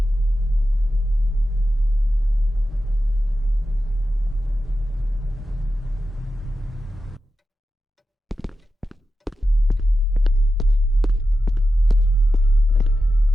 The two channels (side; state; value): both; normal; correlation 0.91